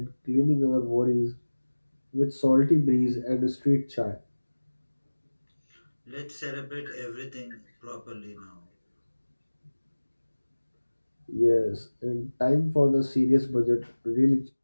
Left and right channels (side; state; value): both; inverted; correlation -1.00